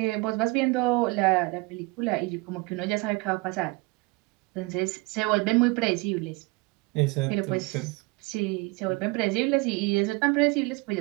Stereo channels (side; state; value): left; quieter; 25.1 dB